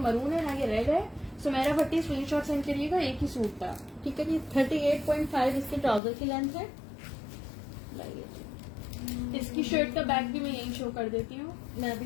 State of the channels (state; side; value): drops out; right; at 6.0 s